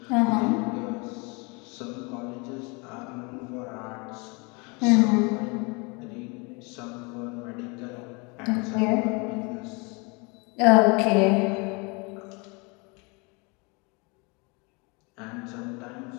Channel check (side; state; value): right; quieter; 29.8 dB